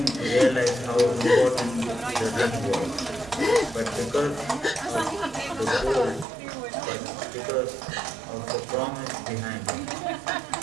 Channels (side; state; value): left; drops out; at 6.2 s